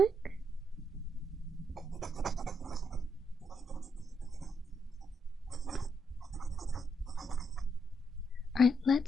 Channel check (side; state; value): both; normal; correlation 0.79